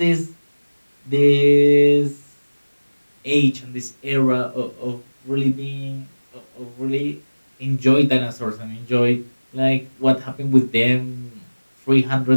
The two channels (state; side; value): inverted; both; correlation -1.00